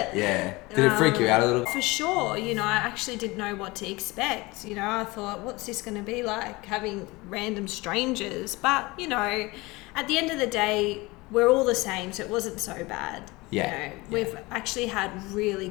Yeah. Did it freak you out a little? For sure. I actually didn't know what to expect. I thought, what's this going to be like, having random strangers? But, at the end of the day, we're all the same, so it wasn't so bad. Yeah. We've actually had really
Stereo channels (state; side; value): quieter; right; 22.7 dB